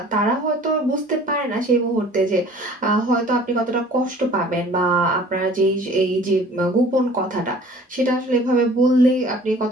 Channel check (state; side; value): normal; both; correlation 0.50